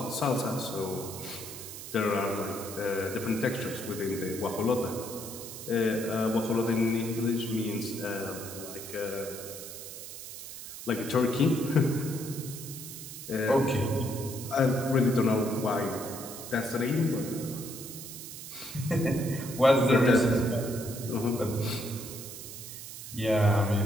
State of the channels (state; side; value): noise; right; hiss, 11 dB below the sound